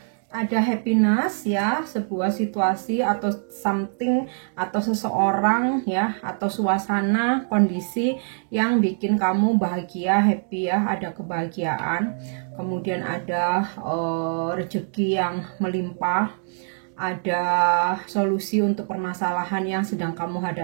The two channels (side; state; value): left; silent; digital silence